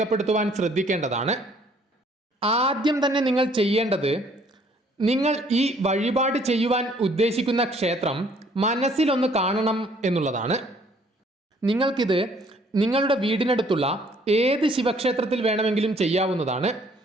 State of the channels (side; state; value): both; normal; correlation 0.61